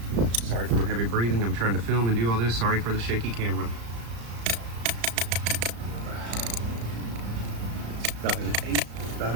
Sorry for my heavy breathing. I'm trying to film and do all this. Sorry for the shaky camera. About 1/8, about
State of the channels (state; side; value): late; left; 35 ms